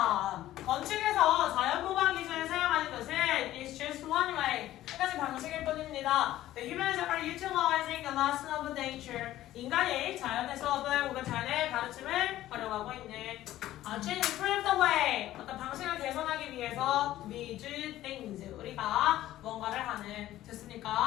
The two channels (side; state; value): right; quieter; 14.2 dB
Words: 건축에서 자연보강 기준을 사용하는 것은 is just one way. 한 가지 방식일 뿐입니다. The humans are utilizing the lesson of nature. 인간이 자연의 수업을 혹은 자연의 가르침을 활용하고 있는 to improve the way. 어떤 방식을 개선하기 위해서 we do things. 우리가 뭔가를 하는.